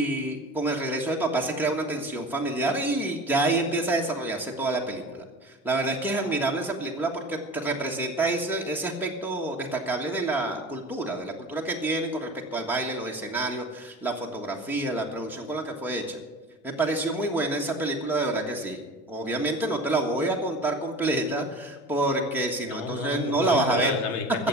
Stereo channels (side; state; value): both; normal; correlation 0.37